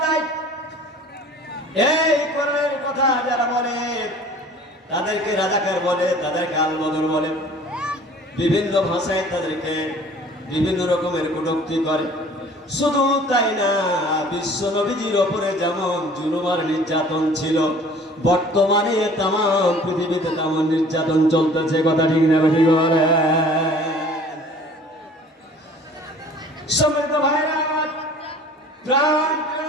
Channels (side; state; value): both; normal; correlation 0.49